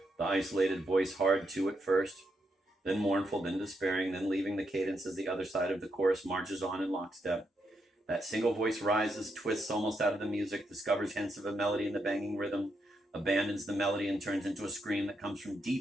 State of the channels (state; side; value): normal; both; correlation 0.81